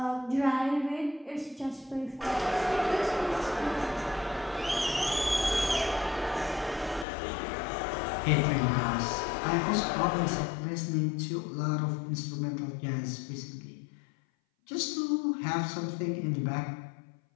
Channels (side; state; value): right; drops out; at 7.1 s